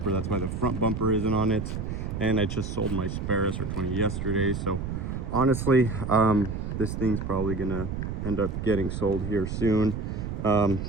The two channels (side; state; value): right; noise; rumble, 4 dB below the sound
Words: that's why the front bumper isn't on it. And I just sold my spare R20 yesterday, so honestly, this thing's probably gonna end up getting sold here soon. I